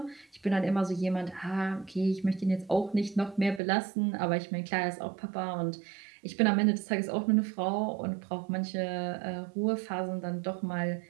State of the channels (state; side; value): drops out; left; at 3.6 s